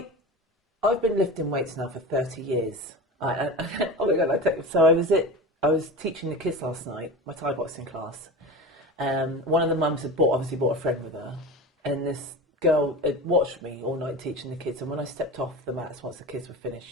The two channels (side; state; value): both; normal; correlation 0.29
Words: I've been lifting weights now for 30 years. Oh my God, so I was teaching the kids last night, my Thai boxing class. One of the mums had obviously brought a friend with her, and this girl had watched me all night teaching the kids. And when I stepped off the mats once the kids were finished,